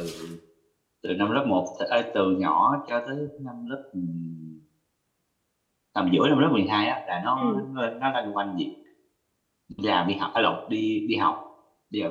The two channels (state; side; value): identical; both; correlation 1.00